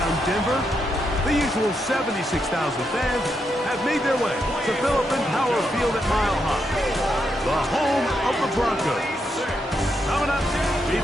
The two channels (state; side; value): normal; both; correlation 0.81